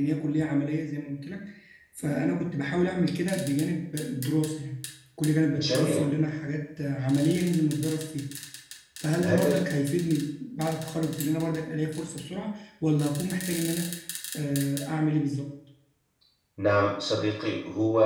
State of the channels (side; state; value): both; identical; correlation 1.00